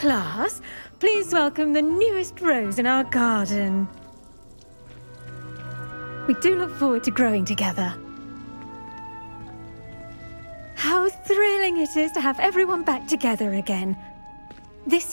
please welcome the newest rose in our garden. We do look forward to growing together. How thrilling it is to have everyone back together again.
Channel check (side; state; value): both; inverted; correlation -1.00